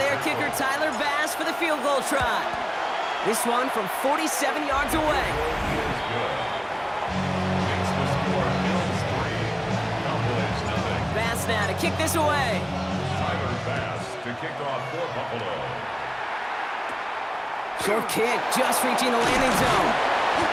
kicker, Tyler Bass, for the field goal try. This one from 47 yards away. Bass now to kick this away. Tyler Bass to kick off for Buffalo. Short kick, just reaching the landing zone.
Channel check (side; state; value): both; identical; correlation 1.00